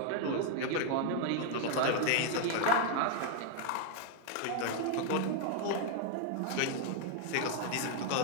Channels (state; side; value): different; both; correlation 0.00